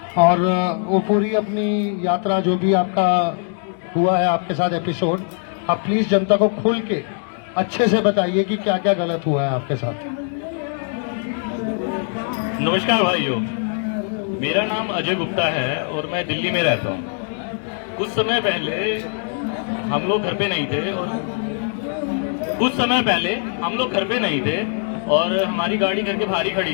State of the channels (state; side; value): silent; right; 55 dB below the other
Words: और वो पूरी अपनी यात्रा जो भी आपका हुआ है आपके साथ एपिसोड, आप प्लीज जनता को खुल के अच्छे से बताइए कि क्या क्या गलत हुआ है आपके साथ। नमस्कार भाइयों, मेरा नाम अजय गुप्ता है और मैं दिल्ली में रहता हूँ। कुछ समय पहले हम लोग घर पे नहीं थे और हमारी गाड़ी घर के बाहर ही खड़ी